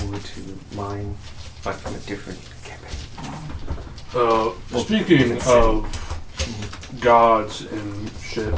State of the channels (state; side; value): identical; both; correlation 1.00